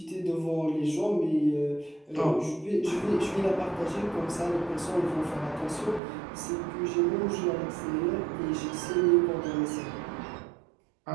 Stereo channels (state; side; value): drops out; left; at 6.0 s